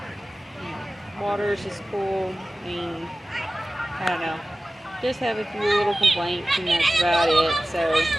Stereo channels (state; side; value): normal; both; correlation 0.96